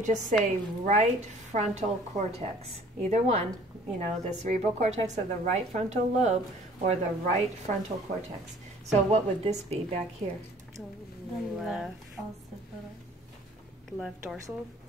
just say right frontal cortex. Either one, you know, the cerebral cortex of the right frontal lobe or the right frontal cortex. So what would this be back here? Left dorsal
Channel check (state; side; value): normal; both; correlation 0.53